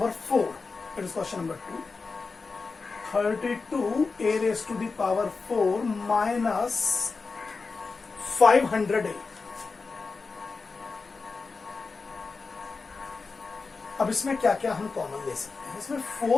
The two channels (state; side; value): quieter; right; 4.3 dB